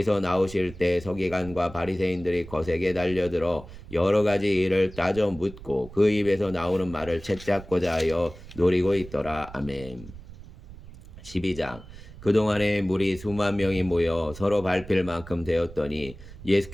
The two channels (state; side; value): noise; right; rumble, 16 dB below the sound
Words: 나오실 때 서기관과 바리새인들이 거세게 달려들어 여러 가지 일을 따져 묻고 그 입에서 나오는 말을 채잡고자 하여 노리고 있더라. 아멘. 12장. 그동안에 무리 수만 명이 모여 서로 밟힐 만큼 되었더니